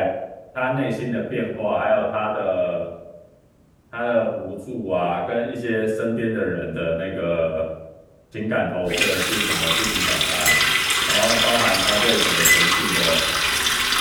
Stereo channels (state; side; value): identical; both; correlation 1.00